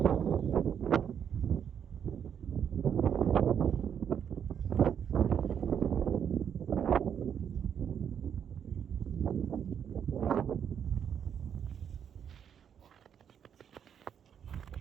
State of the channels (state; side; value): quieter; left; 8.3 dB